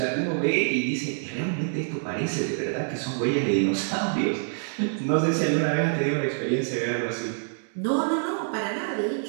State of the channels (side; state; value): left; silent; digital silence